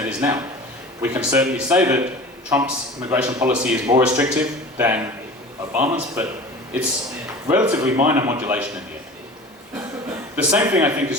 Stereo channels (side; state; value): both; normal; correlation 0.38